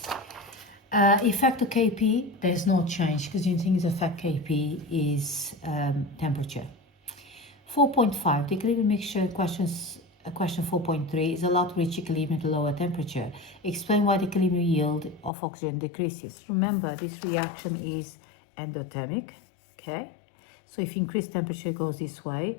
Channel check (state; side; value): drops out; right; at 15.3 s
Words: Effect of Kp, there's no change because the only thing is effect Kp is temperature. 4.5, the equilibrium mixture question 4.3 is allowed to reach equilibrium at a lower temperature. Explain why the equilibrium yield of oxygen decreases. Remember, this reaction is endothermic, okay? So if you increase temperature, it goes this way.